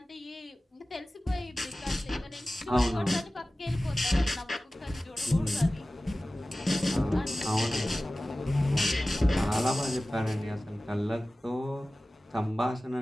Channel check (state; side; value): normal; both; correlation 0.96